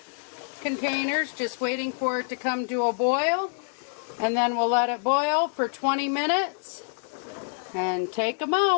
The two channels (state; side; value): silent; right; digital silence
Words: containers just waiting for it to come to a boil. And then we'll let it boil for 20 minutes and take them